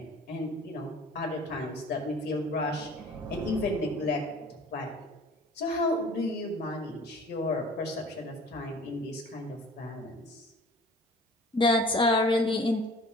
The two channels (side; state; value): both; normal; correlation 0.46